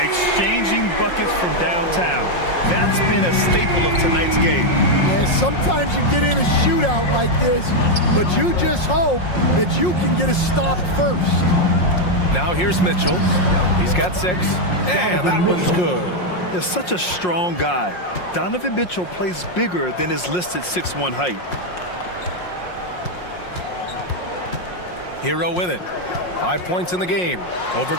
buckets from downtown. That's been a staple of tonight's game. Yeah, sometimes you get in a shootout like this, but you just hope that you can get a stop first. Now here's Mitchell. He's got 6. And that one's good. He's such a strong guy. Donovan Mitchell plays bigger than his listed 6'1" height. Hero with it. 5 points in the game. Over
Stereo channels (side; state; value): right; late; 5.6 ms